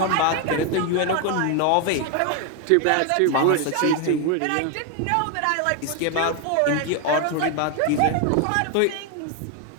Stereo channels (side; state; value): both; different; correlation 0.01